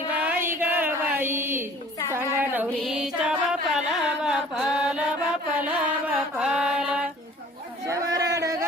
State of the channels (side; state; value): both; normal; correlation 0.50